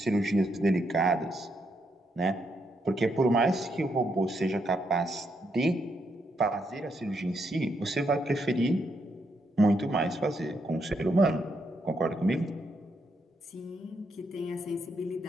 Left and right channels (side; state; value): both; normal; correlation 0.78